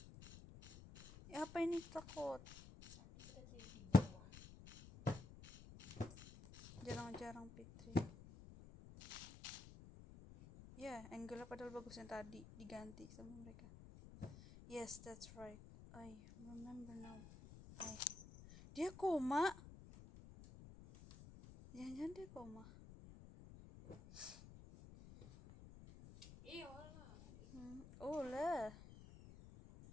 Ya, apa ini takut? Jarang-jarang Fitri. Ya, angle padahal bagus yang tadi diganti sama mereka. Yes, that's right. I remember now. Dia koma. Jangan-jangan dia koma. Oh lah.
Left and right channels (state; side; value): noise; left; rumble, 15 dB below the sound